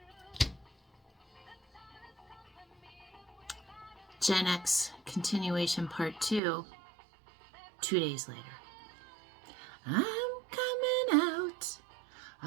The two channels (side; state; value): left; drops out; at 6.4 s